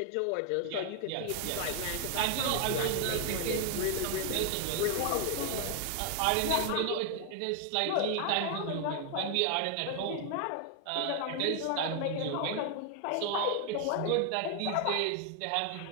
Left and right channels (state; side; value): different; both; correlation 0.00